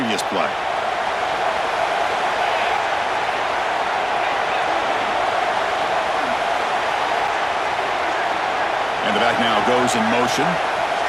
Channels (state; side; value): identical; both; correlation 1.00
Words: play. And the back now goes in motion.